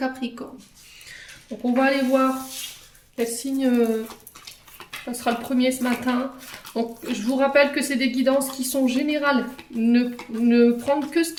Donc on va aller voir quel signe passera le premier ce matin. Donc je vous rappelle que c'est des guidances qui sont générales. Ne prendre que ce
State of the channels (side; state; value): both; identical; correlation 1.00